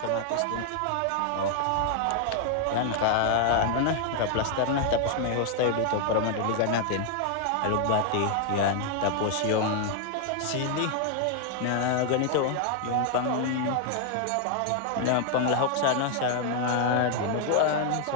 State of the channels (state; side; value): different; both; correlation 0.00